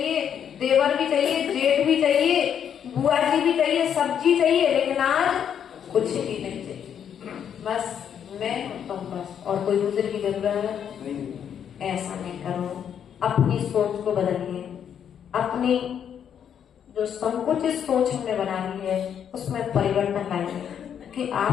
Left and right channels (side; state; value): right; quieter; 8.6 dB